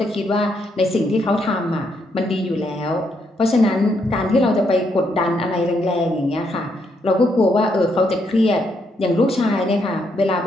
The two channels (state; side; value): normal; both; correlation 0.76